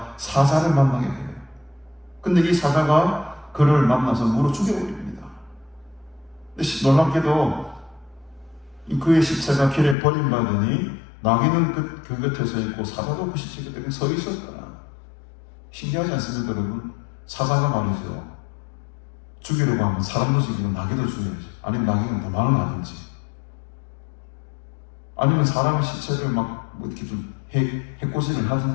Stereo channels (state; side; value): drops out; right; at 10.0 s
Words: 사자를 만나게 돼요. 근데 이 사자가 그를 만나서 물어 죽여버립니다. 근데 놀랍게도 그의 시체가 길에 버림받으니 나귀는 그 곁에 서 있고 사자도 그 시체 곁에 서 있었다. 신기하지 않습니까 여러분? 사자가 말이죠. 죽이려고 하면 사람도 죽이고 나귀도 죽여야지. 아니면 나귀는 도망을 가든지. 아니면 사람의 시체를 막 이렇게 좀 해코지를